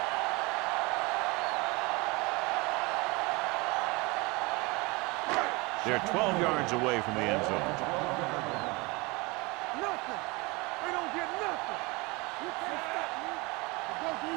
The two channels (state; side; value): quieter; left; 25.7 dB